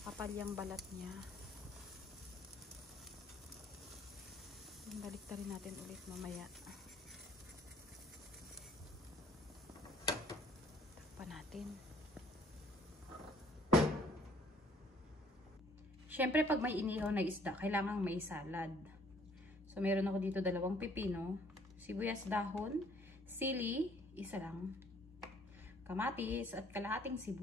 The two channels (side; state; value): both; normal; correlation 0.60